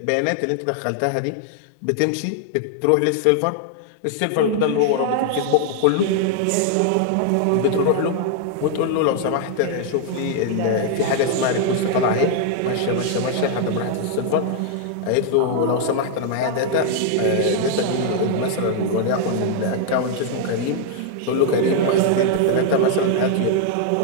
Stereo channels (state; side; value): different; both; correlation 0.00